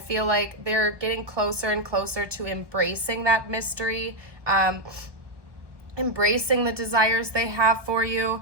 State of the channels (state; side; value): late; left; 1.1 ms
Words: like they're getting closer and closer to embracing that mystery, embracing the desires they have for you.